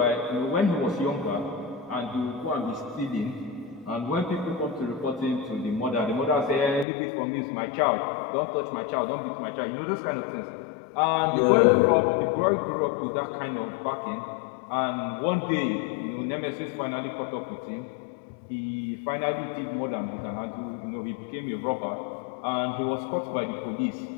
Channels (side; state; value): right; drops out; at 6.9 s